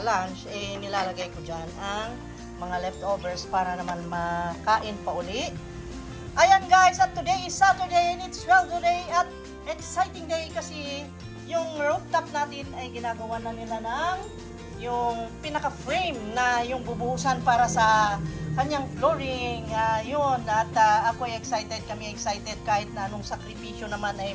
lunch, nilalagay ko dyan ang mga leftovers para naman makain pa uli. Ayan guys, at today is Saturday and it's sweldo day at exciting day kasi yung rooftop natin ay ginagawa na nila ng yung pinaka-frame na yung bubuhusan para sa kanyang flooring. Yun, at ako ay excited, kami excited kahit na anong sakripisyo naman ay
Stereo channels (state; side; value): identical; both; correlation 1.00